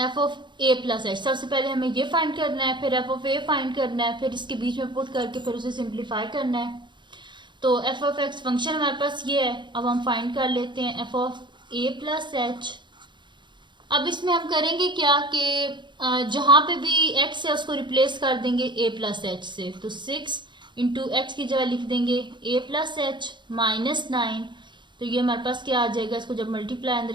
of A plus H, सबसे पहले हमें ये फाइंड करना है, फिर एफ ऑफ ए फाइंड करना है, फिर इसके बीच में पुट करके फिर उसे सिंप्लीफाई करना है। तो एफ ऑफ एक्स फंक्शन हमारे पास ये है। अब हम फाइंड कर लेते हैं f of A plus H. अब इसमें हम करेंगे क्या कि जहाँ पे भी एक्स है उसको रिप्लेस कर देंगे ए प्लस एच से, तो 6 इंटू एक्स की जगह लिख देंगे ए प्लस एच माइनस 9, तो ये हमारे पास क्या आ जाएगा, इसको जब मल्टीप्लाई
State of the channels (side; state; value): left; late; 0.23 ms